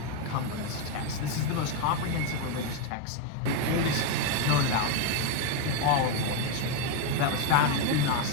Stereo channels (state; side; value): different; both; correlation 0.02